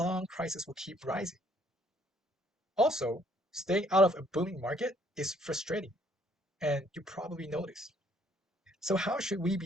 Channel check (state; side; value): normal; both; correlation 0.64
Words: prices will keep rising. Also, staying out of a booming market is frustrating, and you probably noticed. So how should we